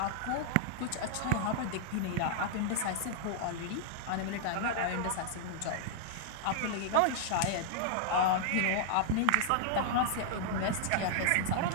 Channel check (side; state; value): both; different; correlation -0.01